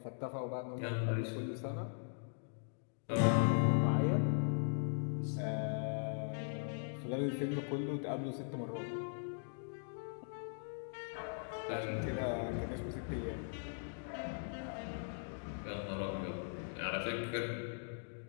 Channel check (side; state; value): right; silent; digital silence